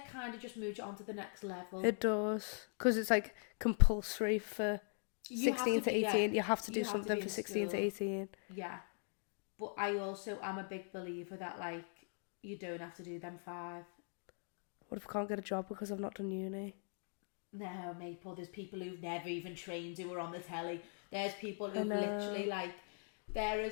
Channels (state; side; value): silent; right; 50 dB below the other